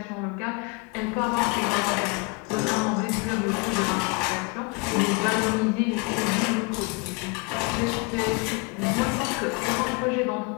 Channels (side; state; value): right; quieter; 28.6 dB